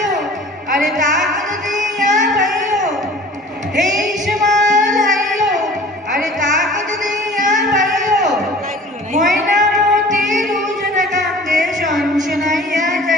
আরে তাকত দিয়া ভাইও, এই সমান হাইও আরে তাকত দিয়া ভাইও, ময়নামতি রুজন কান্দে শনশনাইয়া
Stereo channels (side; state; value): both; normal; correlation 0.45